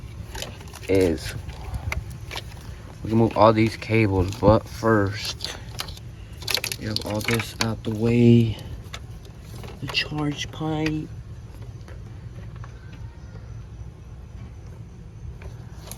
is we can move all these cables, but first we have all this out the way. The charge pipe.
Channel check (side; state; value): both; identical; correlation 1.00